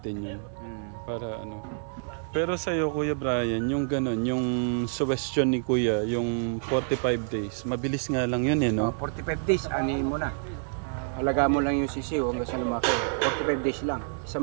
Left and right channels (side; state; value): left; silent; 59 dB below the other